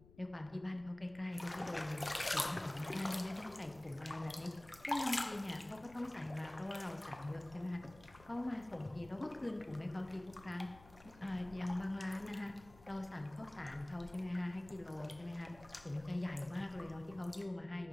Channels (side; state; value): left; noise; rumble, 21 dB below the sound